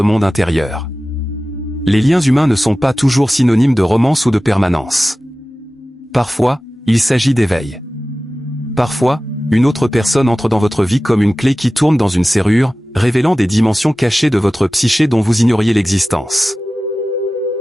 monde intérieur. Les liens humains ne sont pas toujours synonymes de romance ou de permanence. Parfois, il s'agit d'éveil. Parfois, une autre personne entre dans votre vie comme une clé qui tourne dans une serrure, révélant des dimensions cachées de votre psyché dont vous ignoriez l'existence.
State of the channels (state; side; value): normal; both; correlation 0.96